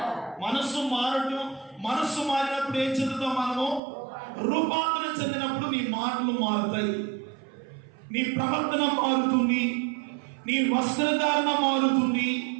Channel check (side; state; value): left; drops out; at 3.8 s